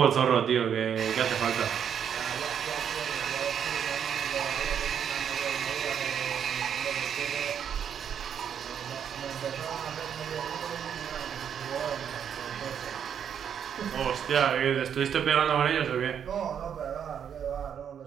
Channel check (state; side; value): quieter; left; 8.3 dB